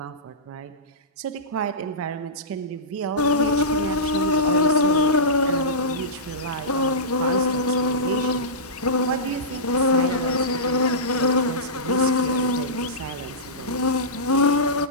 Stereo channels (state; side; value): normal; both; correlation -0.17